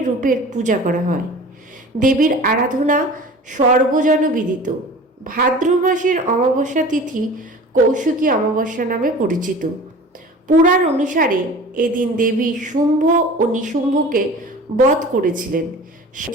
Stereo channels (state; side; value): normal; both; correlation 0.40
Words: রূপের পূজা করা হয়। দেবীর আরাধনা সর্বজনবিদিত। ভাদ্র মাসের অমাবস্যা তিথি কৌশিকী অমাবস্যা নামে পরিচিত। পুরাণ অনুসারে এদিন দেবী শুম্ভ ও নিশুম্ভকে বধ করেছিলেন।